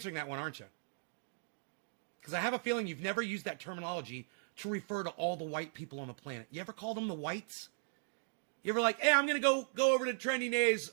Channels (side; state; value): left; silent; digital silence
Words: that one, aren't you? Because I have a feeling you've never used that terminology to refer to all the white people on the planet. You ever call them the whites? You ever like, hey, I'm going to go over to Trendy Nay's